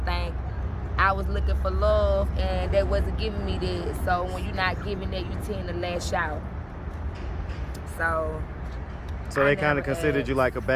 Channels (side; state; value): both; identical; correlation 1.00